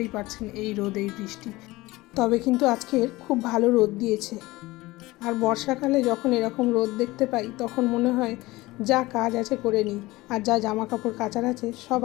পারছেন, এই রোদ এই বৃষ্টি। তবে কিন্তু আজকের খুব ভালো রোদ দিয়েছে। আর বর্ষাকালে যখন এরকম রোদ দেখতে পাই তখন মনে হয় যা কাজ আছে করে নিই, আর যা জামা কাপড় কাচার আছে সব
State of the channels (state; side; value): quieter; right; 19.9 dB